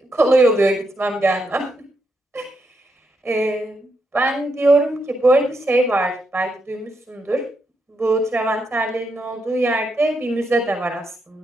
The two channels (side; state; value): both; normal; correlation 0.81